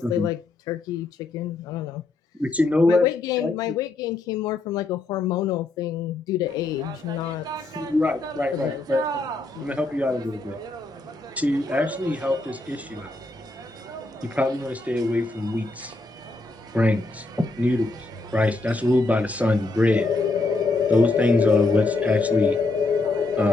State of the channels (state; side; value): quieter; right; 3.2 dB